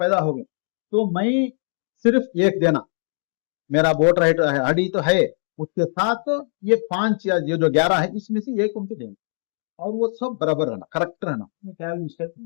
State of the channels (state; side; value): silent; right; digital silence